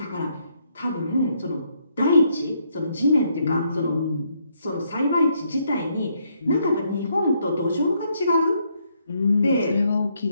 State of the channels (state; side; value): inverted; both; correlation -0.74